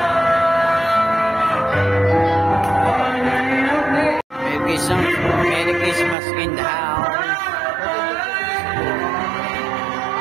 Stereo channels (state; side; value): drops out; left; at 6.2 s